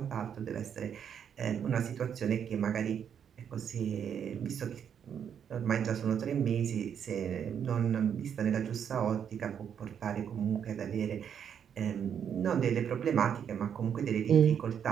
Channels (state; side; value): quieter; left; 8.2 dB